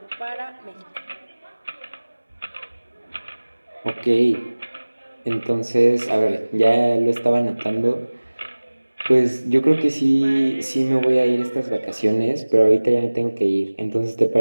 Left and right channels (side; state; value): both; inverted; correlation -1.00